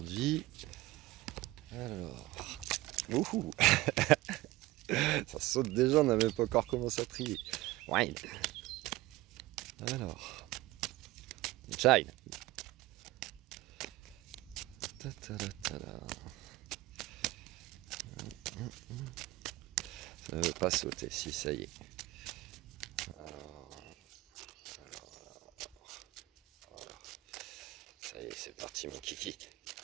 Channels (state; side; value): quieter; left; 18.9 dB